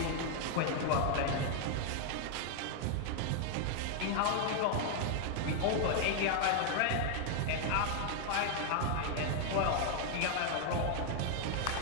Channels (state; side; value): different; both; correlation 0.00